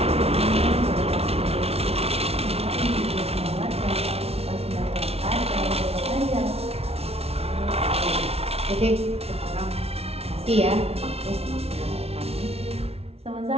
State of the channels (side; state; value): left; late; 0.30 ms